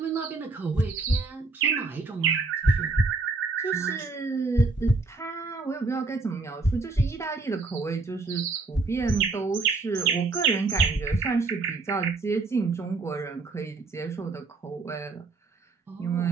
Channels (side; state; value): left; quieter; 3.7 dB